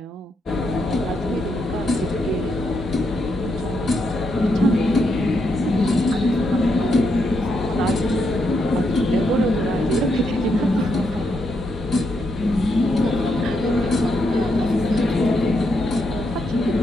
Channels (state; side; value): normal; both; correlation 0.80